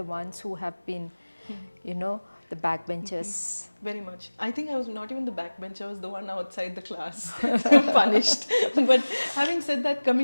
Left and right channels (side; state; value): both; inverted; correlation -1.00